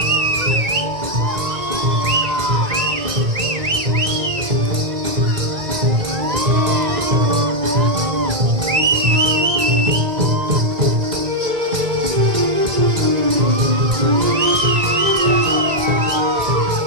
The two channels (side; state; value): left; late; 1.8 ms